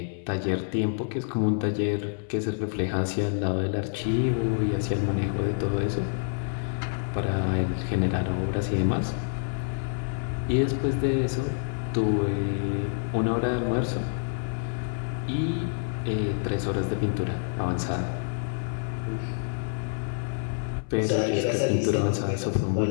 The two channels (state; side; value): silent; right; 60 dB below the other